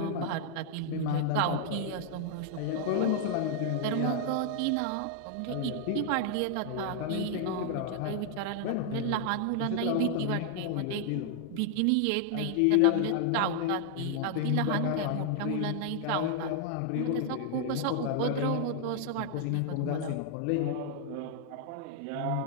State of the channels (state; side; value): different; both; correlation 0.00